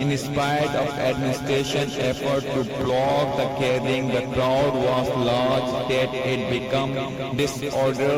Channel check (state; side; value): identical; both; correlation 1.00